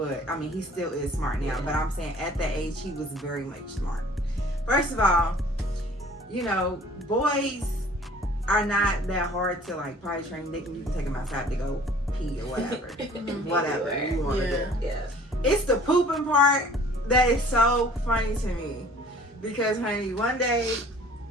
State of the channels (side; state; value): both; normal; correlation 0.51